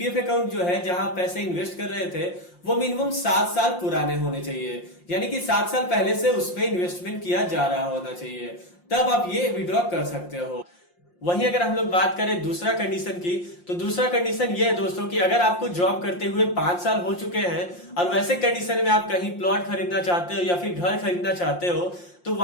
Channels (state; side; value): late; right; 5.7 ms